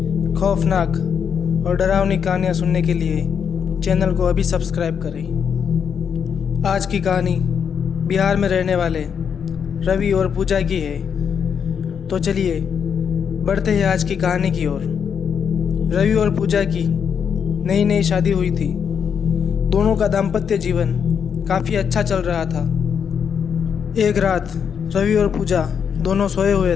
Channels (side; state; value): right; quieter; 7.3 dB